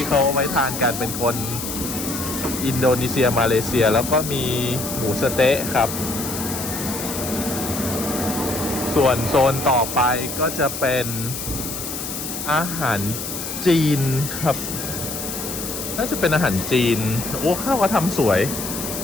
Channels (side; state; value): left; noise; hiss, 6 dB below the sound